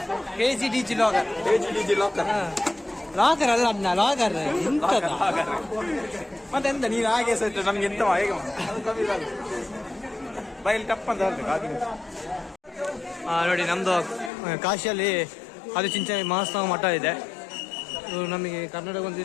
DJ logger. Logger ಅಲ್ಲ ಅಣ್ಣ, ಲಾಗರ್ ಮತ್ತೆ ಎಂತ ನೀನು ಹಾಗೆ ಸಹಿತ ನಮ್ಗೆ ಎಂತ ಹೇಗೆ ಬೈಲ್ ಟಪ್ ಅಂತ ನೋಡಿ. ನಮ್ದು ಕಾಶಿಯಲ್ಲಿ ಆದಿಚುಂಚನ ಮಹಾಸ್ನಾನ ಮಠ ಇದೆ. ನಮಗೆ ಕರ್ನಾಟಕ ಒಂದು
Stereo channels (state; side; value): drops out; right; at 14.3 s